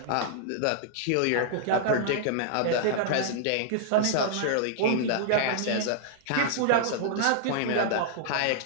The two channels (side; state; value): both; different; correlation -0.01